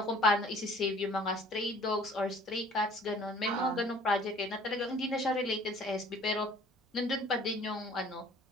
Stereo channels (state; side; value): normal; both; correlation 0.53